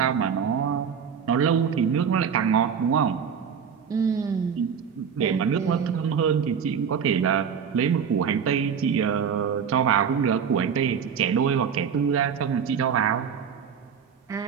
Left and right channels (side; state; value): left; quieter; 7.1 dB